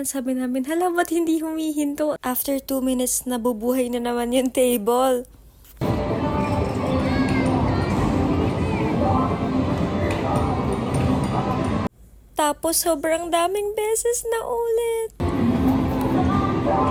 Sabi namin, hala, ba't hindi humihinto? After 2 minutes, nabubuhay na naman yung table. Tapos, sobrang daming beses na ulit.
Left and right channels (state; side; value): identical; both; correlation 1.00